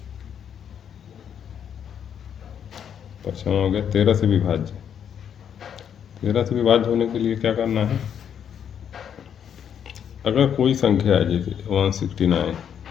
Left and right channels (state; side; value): quieter; right; 8.5 dB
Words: पचपन हो गया 13 से विभाज्य। 13 से विभाज्य होने के लिए क्या करना है, अगर कोई संख्या है जैसे 169,